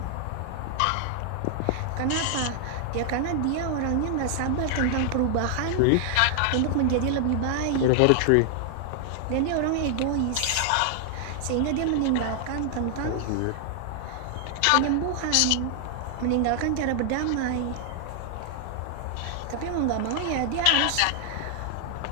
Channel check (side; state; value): both; different; correlation 0.00